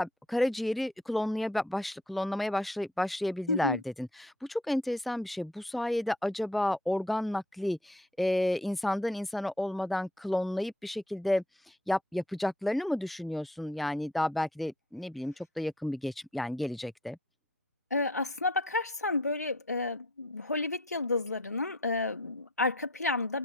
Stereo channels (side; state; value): both; normal; correlation 0.57